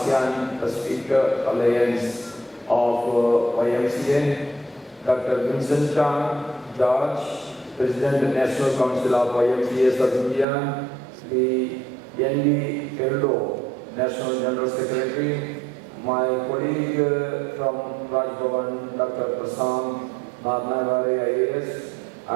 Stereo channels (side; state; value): left; drops out; at 10.5 s